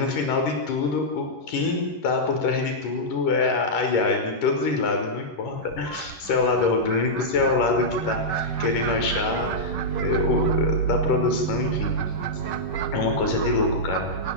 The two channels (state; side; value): late; right; 11 ms